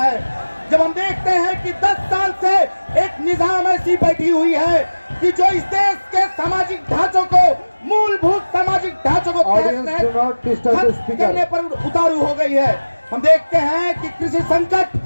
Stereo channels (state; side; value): inverted; both; correlation -1.00